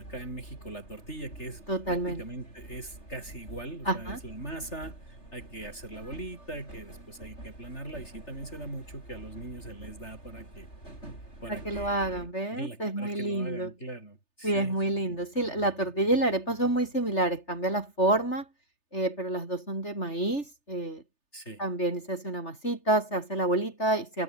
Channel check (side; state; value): right; late; 3.3 ms